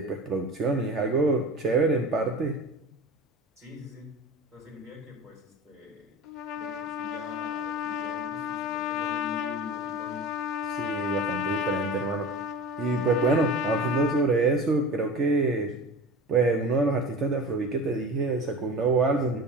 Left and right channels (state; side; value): normal; both; correlation 0.35